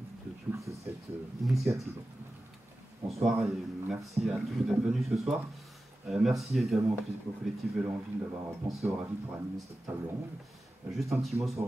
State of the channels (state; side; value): normal; both; correlation 0.94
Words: toute cette initiative. Bonsoir et merci à tous d'être venus ce soir. Merci également au collectif Vélo en Ville d'avoir pensé au Ravi pour animer cette table ronde. Juste un petit mot sur